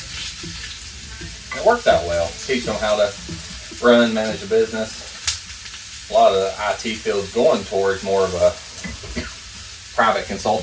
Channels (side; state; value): both; identical; correlation 1.00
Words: It works out well. Teach them how to run, manage a business. A lot of the IT field's going towards more of a private